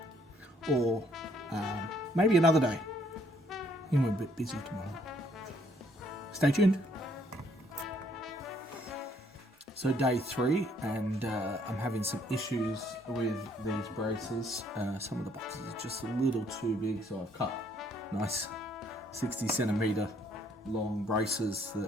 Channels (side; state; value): both; normal; correlation 0.66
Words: or maybe another day. I think we're a bit busy tomorrow. Stay tuned. So day 3, and I'm having some issues with these braces. Some of the boxes are just a little too big, so I've cut nice 60 centimeter long braces